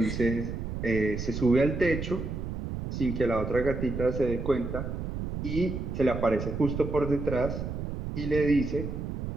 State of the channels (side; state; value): right; noise; rumble, 5 dB below the sound